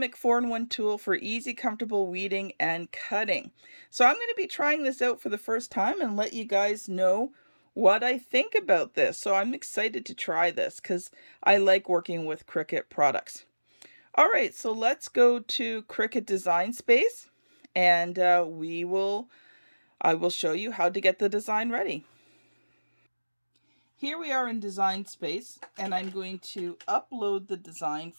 4-in-1 tool for easy, comfortable weeding and cutting. So I'm going to be trying this out for the first time and let you guys know what I think about this. So I'm excited to try this because I like working with Cricut products. All right, so let's go to Cricut Design Space, and I will show you how to get the design ready. Here we are in Design Space, and I'm going to upload the design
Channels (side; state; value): both; inverted; correlation -1.00